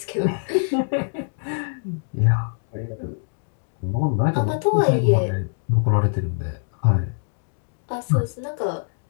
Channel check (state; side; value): silent; right; digital silence